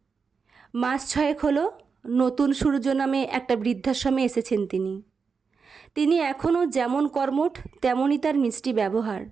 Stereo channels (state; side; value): quieter; left; 5.4 dB